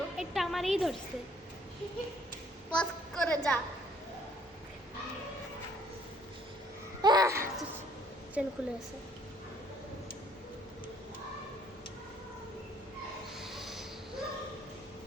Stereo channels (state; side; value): normal; both; correlation 0.62